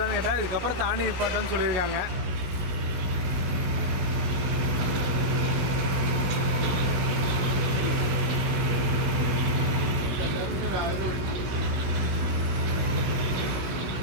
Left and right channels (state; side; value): late; left; 16 ms